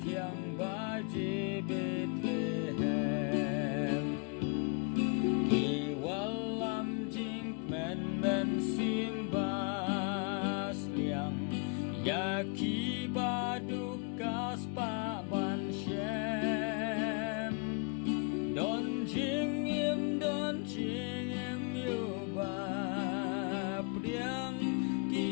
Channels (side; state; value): right; quieter; 33.0 dB